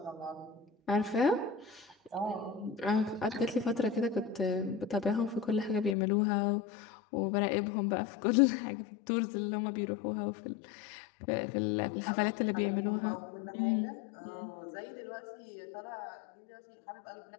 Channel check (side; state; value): right; drops out; at 6.0 s